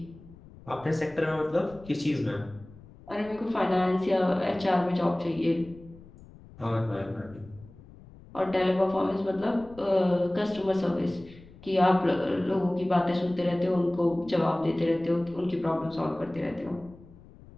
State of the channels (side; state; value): left; noise; rumble, 21 dB below the sound